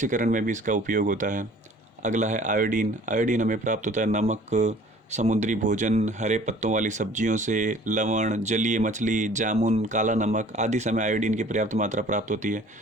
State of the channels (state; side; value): normal; both; correlation 0.51